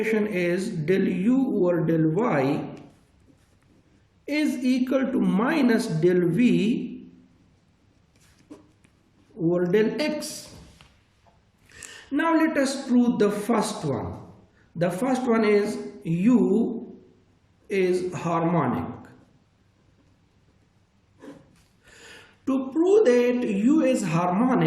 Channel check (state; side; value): identical; both; correlation 1.00